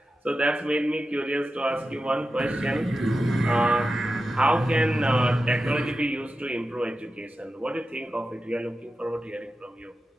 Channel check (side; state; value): both; normal; correlation 0.91